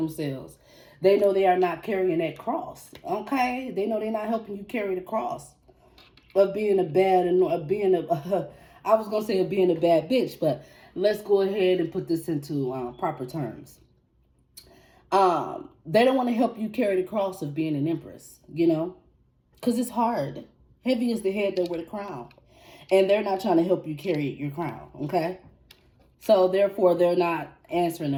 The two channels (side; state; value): both; identical; correlation 1.00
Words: They know they are not carrying that cross. Okay. They know they're not helping you carry the cross. Of being a bad, I was going to say of being a bad bitch, but let's go ahead and put this into proper terms. They don't want to help you carry the cross of being an Empress, you know, because it's hard. Heavy is the head that wear the crown. And they're not trying to help you carry your crown, okay? So, therefore, they're not answering